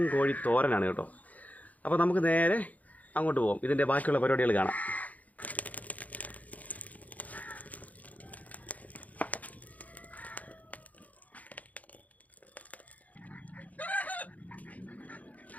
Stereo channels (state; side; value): late; right; 0.075 ms